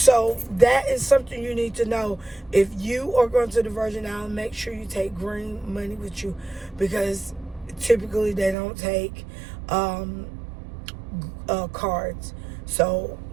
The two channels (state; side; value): drops out; left; at 8.6 s